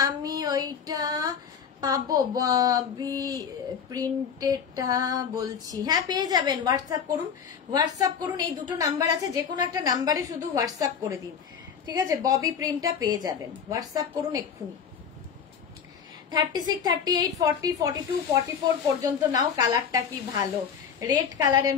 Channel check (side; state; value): right; quieter; 7.1 dB